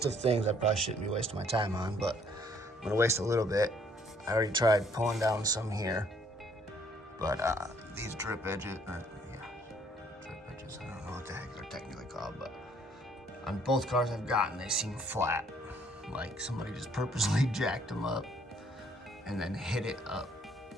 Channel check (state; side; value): normal; both; correlation 0.63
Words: of things I probably shouldn't be wasting my time on, but I'm gonna waste a little bit. I already tried pulling down some here, but these drip edges, I don't know what the heck they're technically called, but on both cars I've gotten, they seem flat. Like somebody just purposely jacked them up and then hit it up.